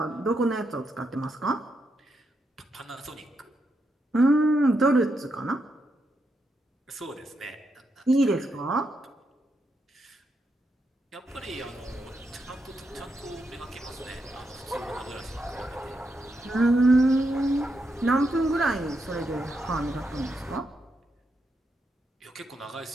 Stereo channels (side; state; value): both; normal; correlation 0.82